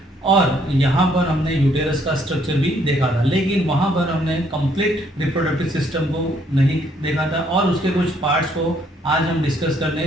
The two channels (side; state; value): both; normal; correlation 0.68